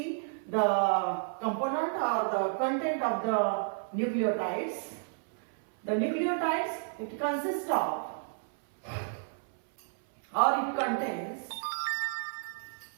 the component or the content of the nucleotides. The nucleotides, it consists of or it contains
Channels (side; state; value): left; silent; 57 dB below the other